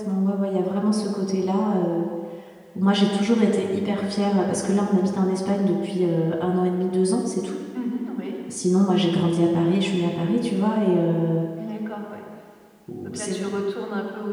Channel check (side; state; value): both; identical; correlation 1.00